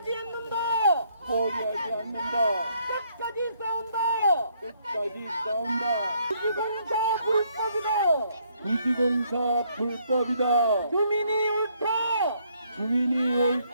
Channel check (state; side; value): inverted; both; correlation -0.69